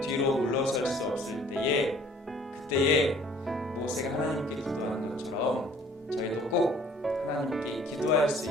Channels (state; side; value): normal; both; correlation 0.55